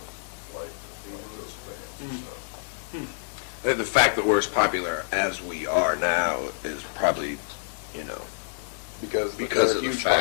liked those bands and stuff. The fact that we're as popular as we are now is probably, because of the huge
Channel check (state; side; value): silent; right; digital silence